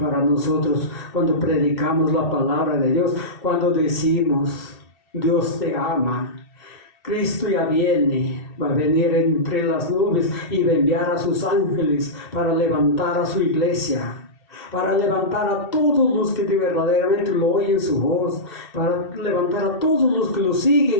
nosotros cuando predicamos la palabra de Dios, cuando decimos: Dios te ama, Cristo ya viene, va a venir entre las nubes y va a enviar a sus ángeles para levantar a su iglesia, para levantar a todos los que verdaderamente lo oyen su voz, para levantar a todos los que lo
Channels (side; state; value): right; late; 2.7 ms